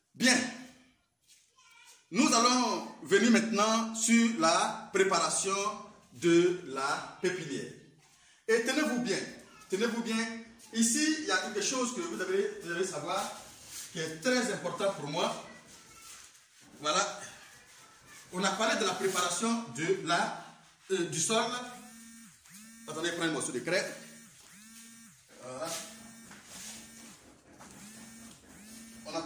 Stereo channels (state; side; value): identical; both; correlation 1.00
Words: Bien. Nous allons venir maintenant sur la préparation de la pépinière. Et tenez-vous bien, ici il y a quelque chose que vous devez savoir qui est très important pour moi. Voilà, on a parlé de la préparation du sol. Attendez, je prends un morceau de craie. Voilà. On a